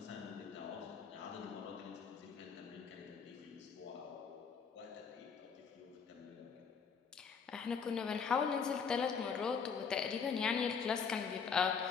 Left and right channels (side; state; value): right; quieter; 6.1 dB